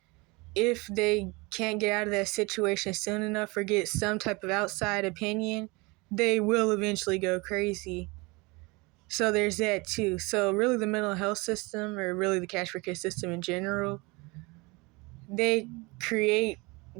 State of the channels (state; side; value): quieter; left; 25.8 dB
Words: if they can't get out of that situation soon enough or get some type of outside opinion, they will eventually go crazy. So there's that too. So really the mental health system, or really the cash for kids system in general, they create